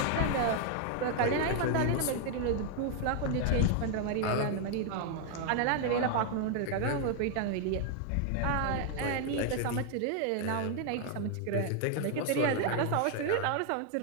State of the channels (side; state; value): both; different; correlation 0.00